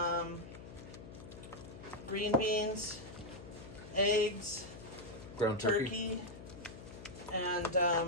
green beans, eggs, Ground turkey. and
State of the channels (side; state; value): left; noise; hum, 14 dB below the sound